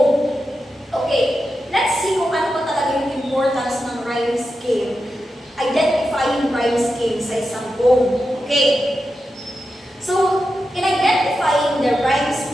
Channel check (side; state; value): both; normal; correlation 0.89